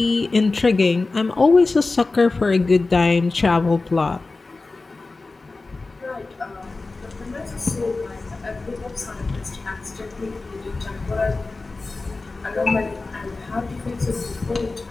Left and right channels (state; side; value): quieter; right; 3.5 dB